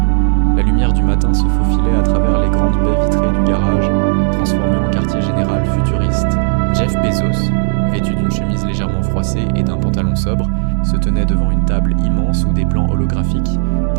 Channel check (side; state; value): left; silent; digital silence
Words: La lumière du matin se faufilait à travers les grandes baies vitrées du garage, transformées en quartier général futuriste. Jeff Bezos, vêtu d'une chemise légèrement froissée et d'un pantalon sobre, se tenait devant une table immense où des plans holographiques,